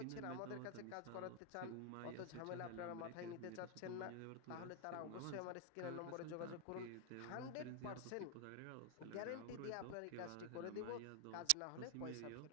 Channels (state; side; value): different; both; correlation 0.00